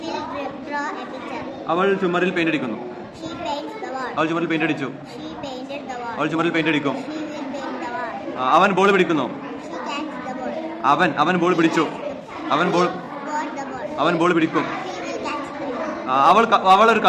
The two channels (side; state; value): both; identical; correlation 1.00